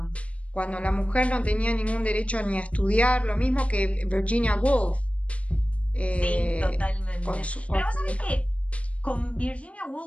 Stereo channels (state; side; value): late; right; 0.064 ms